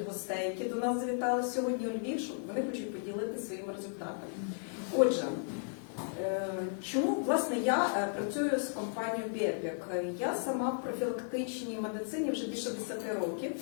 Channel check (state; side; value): silent; right; 55 dB below the other